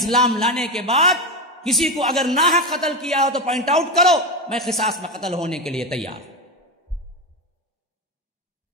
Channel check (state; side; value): normal; both; correlation 0.16